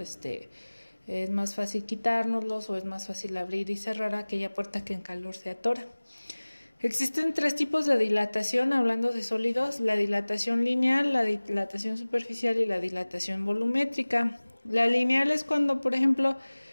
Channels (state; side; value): inverted; both; correlation -1.00